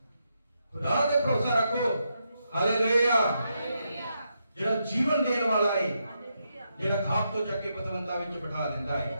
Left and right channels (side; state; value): both; inverted; correlation -0.82